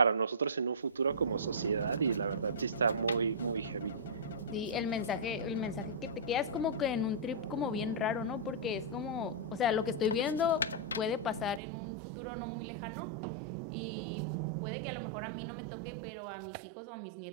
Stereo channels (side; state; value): left; drops out; at 11.6 s